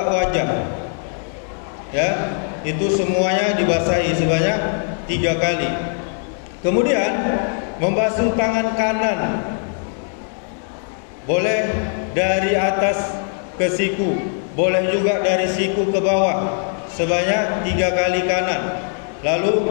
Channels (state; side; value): silent; right; 55 dB below the other